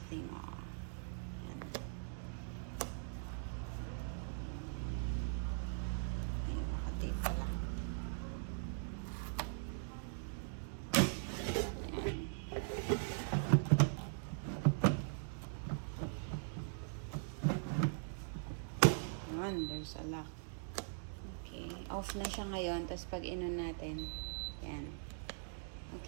off. Yan. Ayun, nakatape pala. Yun, there's a lock. Okay, off na siya ngayon. Tapos pag inon natin, yan.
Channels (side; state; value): left; silent; digital silence